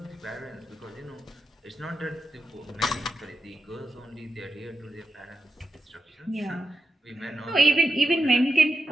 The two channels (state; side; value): normal; both; correlation 0.87